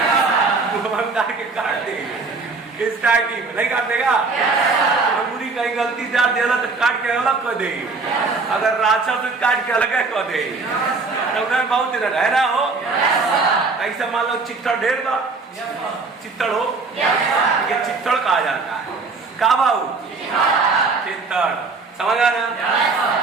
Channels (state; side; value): quieter; left; 4.1 dB